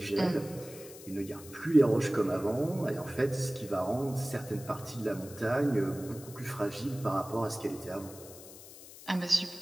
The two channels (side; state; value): left; noise; hiss, 17 dB below the sound